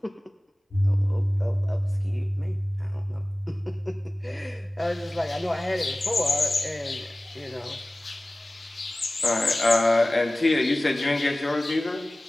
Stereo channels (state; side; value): normal; both; correlation 0.98